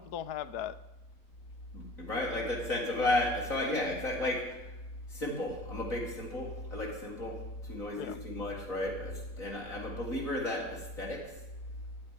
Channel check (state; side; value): late; right; 4.0 ms